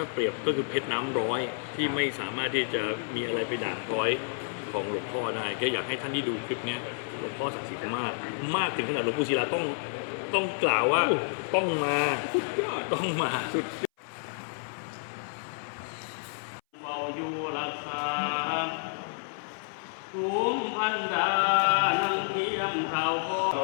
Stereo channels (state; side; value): silent; right; 58 dB below the other